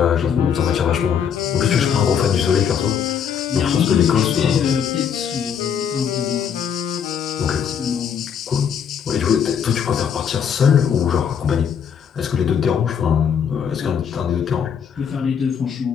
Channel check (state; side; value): quieter; right; 7.7 dB